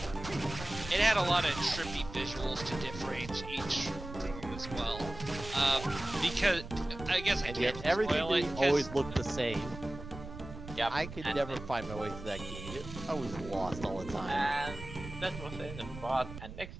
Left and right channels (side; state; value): right; noise; rumble, 12 dB below the sound